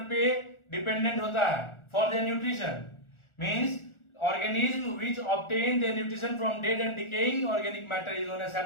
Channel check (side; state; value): right; late; 1.4 ms